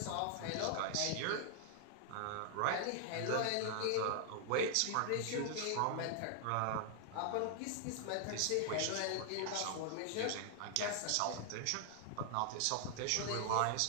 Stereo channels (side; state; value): both; different; correlation 0.00